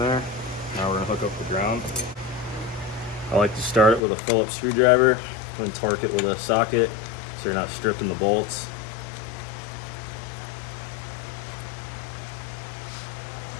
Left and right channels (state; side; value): drops out; right; at 4.0 s